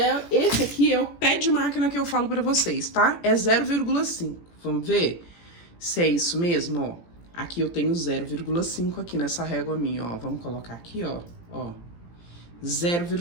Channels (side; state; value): right; late; 17 ms